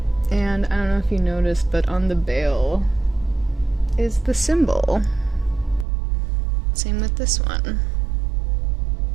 And I don't know if you noticed, but on the bail is the symbol. Same with this one.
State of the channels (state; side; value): drops out; left; at 5.9 s